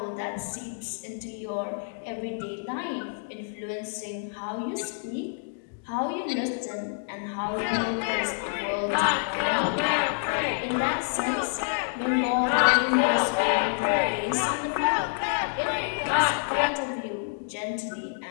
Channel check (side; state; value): right; silent; digital silence